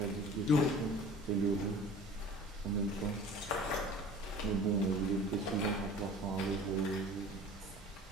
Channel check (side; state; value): both; normal; correlation 0.44